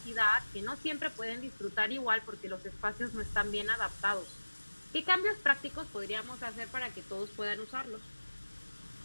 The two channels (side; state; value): both; inverted; correlation -1.00